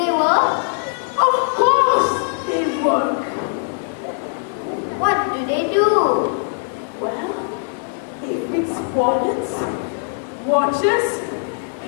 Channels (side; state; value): right; silent; digital silence